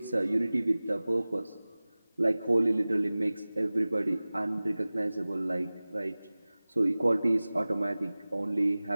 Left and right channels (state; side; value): inverted; both; correlation -0.99